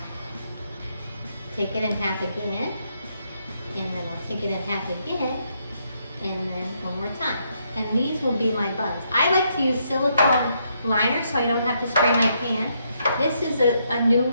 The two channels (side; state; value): both; inverted; correlation -0.76